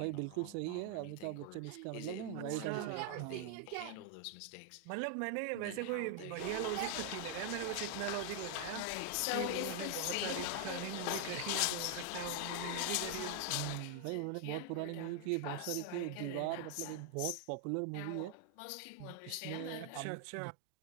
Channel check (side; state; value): both; different; correlation 0.00